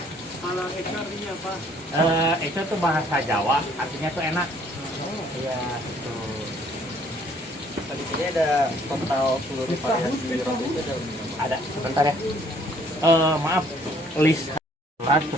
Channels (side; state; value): both; normal; correlation 0.61